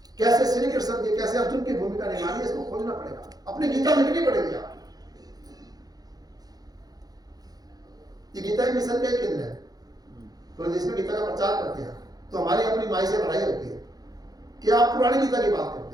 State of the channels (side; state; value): left; late; 0.19 ms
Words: कैसे श्री कृष्ण की, कैसे अर्जुन की भूमिका निभानी है, इसको खोजना पड़ेगा, अपनी गीता लिखनी पड़ेगी। ये गीता ही मिशन का ही केंद्र है। पूरे देश में गीता का प्रचार करते हैं, तो हमारी अपनी माई से लड़ाई होती है कि आप पुरानी गीता की बात